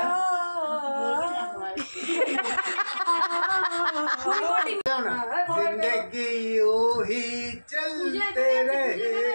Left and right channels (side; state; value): both; inverted; correlation -1.00